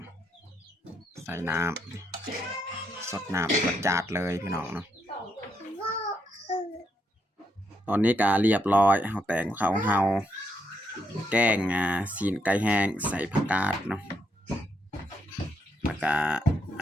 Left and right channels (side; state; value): both; normal; correlation 0.78